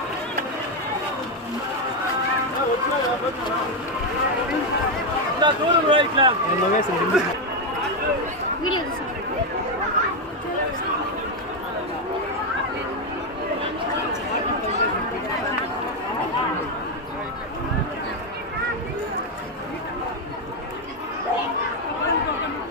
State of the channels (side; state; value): both; normal; correlation 0.05